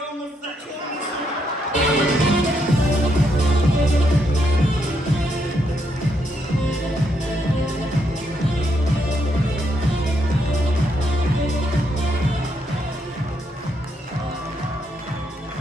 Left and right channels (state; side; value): normal; both; correlation 0.77